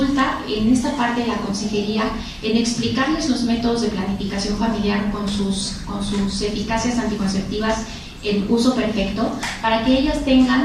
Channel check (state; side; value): identical; both; correlation 1.00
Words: en esta parte de la consejería, en explicarles los métodos de planificación familiar con sus eficacias anticonceptivas en uso perfecto, para que ellas